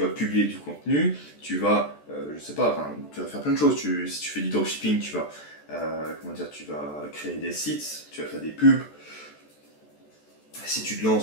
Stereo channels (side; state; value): right; late; 14 ms